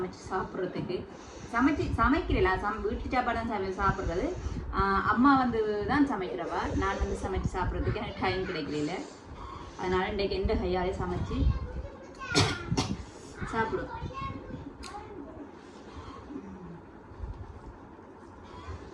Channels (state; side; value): identical; both; correlation 1.00